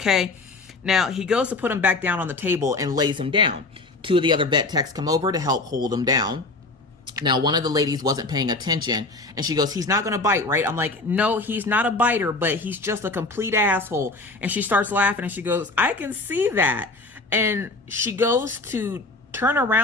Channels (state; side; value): quieter; right; 3.3 dB